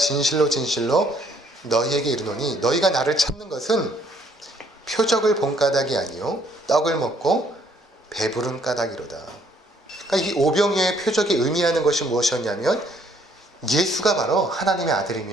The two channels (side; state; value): both; normal; correlation 0.65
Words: 진실로 너희에게 이르노니 너희가 나를 찾는 것은 표적을 본 까닭이 아니요 떡을 먹고 배부른 까닭이로다. 그러니까 이 오병이어의 표적이 의미하는 것이 무엇이었냐면 예수가 바로 하나님의